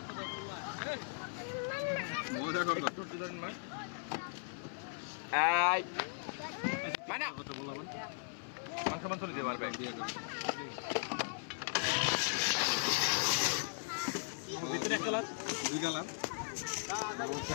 মজা করবো। মানে মাংস মাংস নিতে পারবে। ভিতরে এক কালার, দুই কালার,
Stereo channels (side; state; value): right; silent; 53 dB below the other